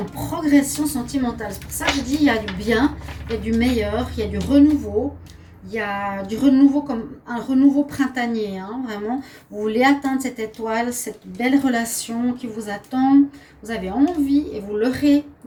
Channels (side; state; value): both; identical; correlation 1.00